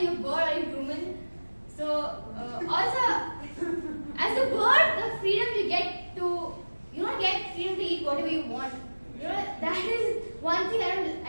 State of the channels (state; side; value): inverted; both; correlation -1.00